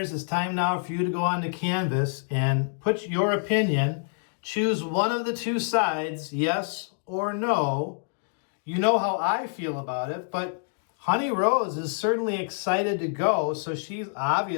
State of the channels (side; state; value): right; silent; digital silence